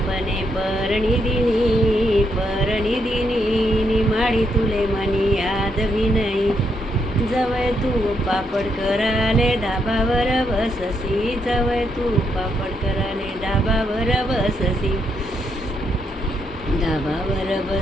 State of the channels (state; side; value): normal; both; correlation 0.77